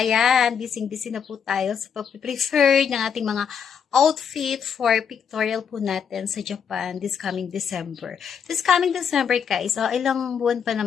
busy na po tayo sa pag-prefer ng ating mga outfit for pictorial po natin sa Japan this coming December. This coming December guys, ilang buwan pa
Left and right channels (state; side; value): quieter; right; 7.3 dB